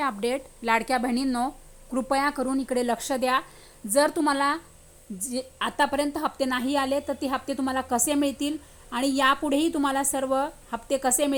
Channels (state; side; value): identical; both; correlation 1.00